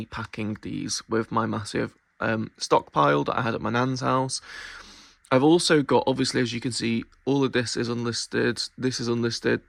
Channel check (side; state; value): both; identical; correlation 1.00